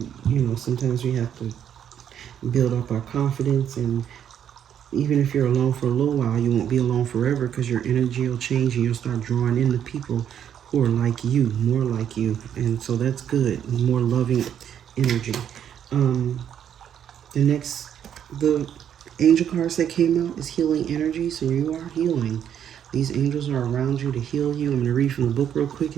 sometimes we have to build up our confidence, and even if you're alone for a little while, you won't be alone forever because your energy will change and you'll start drawing in the people who are like you, more like you. And so that's good, more loving energy. The angel cards that came out is healing energy, so you are healing. These angels are around you to heal you. I'm going to read from the book real quick,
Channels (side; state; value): left; quieter; 9.3 dB